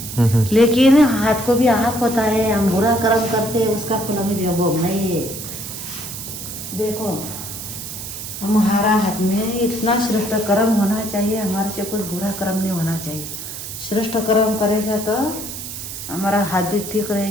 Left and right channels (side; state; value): right; noise; hiss, 9 dB below the sound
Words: लेकिन हाथ को भी आँख होता है। हम बुरा कर्म करते हैं उसका फल हमें भोगना ही है। देखो हमारा हाथ में इतना श्रेष्ठ कर्म होना चाहिए, हमारे से कुछ बुरा कर्म नहीं होना चाहिए। श्रेष्ठ कर्म करेगा तो हमारा हाथ भी ठीक